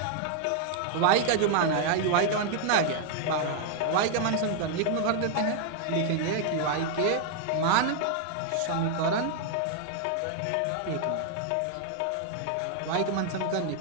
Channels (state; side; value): different; both; correlation 0.00